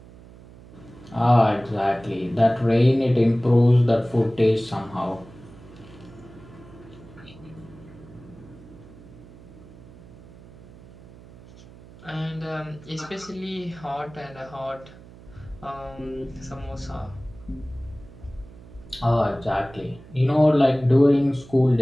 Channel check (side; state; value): right; noise; hum, 20 dB below the sound